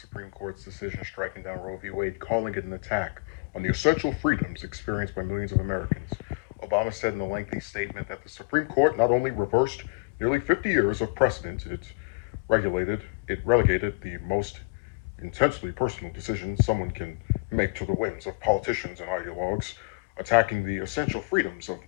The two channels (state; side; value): quieter; right; 31.9 dB